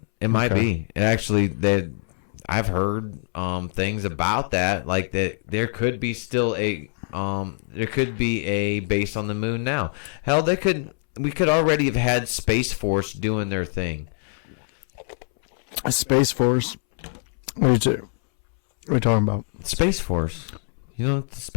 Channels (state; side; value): silent; right; 63 dB below the other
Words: It might be. It actually, I've heard things about that, like that there could be still a base on the moon now. Hell, we could already have had Space Force doing their thing. A Space Force? What are you talking about? Space Force. You know what the